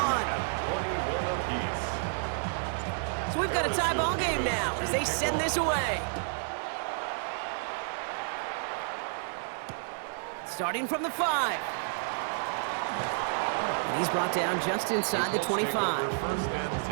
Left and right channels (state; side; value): silent; left; digital silence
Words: So we've got a tie ball game now as they send this away. Starting from the 5. And he's brought down just inside the 25. First and